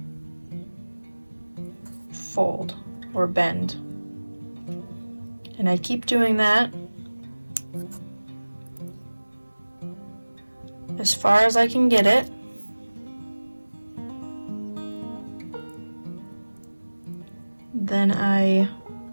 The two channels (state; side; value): inverted; both; correlation -1.00